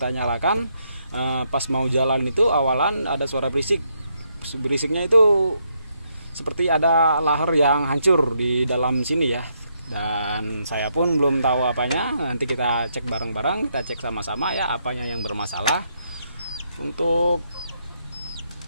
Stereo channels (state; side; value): inverted; both; correlation -0.77